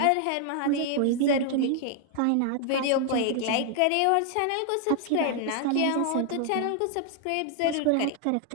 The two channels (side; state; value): both; different; correlation 0.00